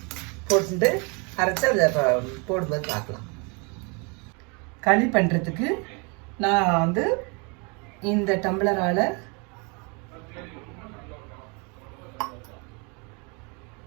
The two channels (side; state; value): left; quieter; 32.2 dB